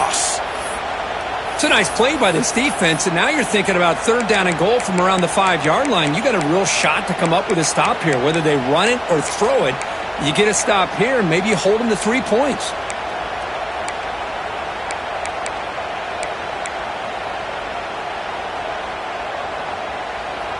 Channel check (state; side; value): identical; both; correlation 1.00